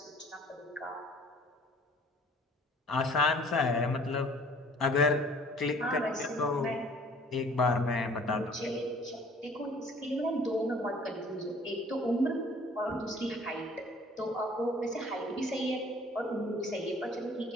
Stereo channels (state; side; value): normal; both; correlation 0.53